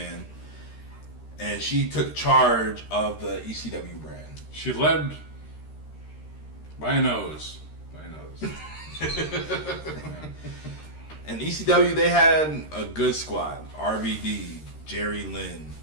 and she took charge of the ECW brand. She led by a nose. By a nose. And ECW, they had a good squad. RVD, Jerry Lynn,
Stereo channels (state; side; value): late; right; 13 ms